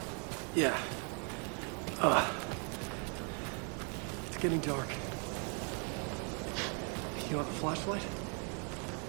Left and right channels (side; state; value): left; quieter; 39.3 dB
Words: Yeah. It's getting dark. You want a flashlight?